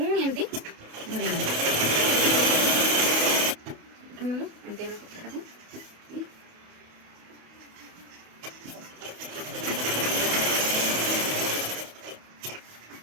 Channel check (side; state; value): left; late; 28 ms